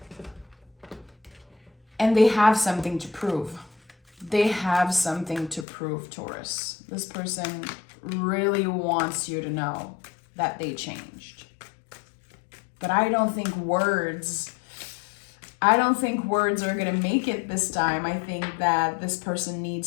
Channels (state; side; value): drops out; right; at 5.7 s